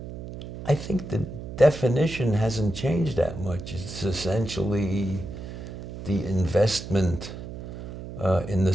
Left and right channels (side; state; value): right; noise; hum, 10 dB below the sound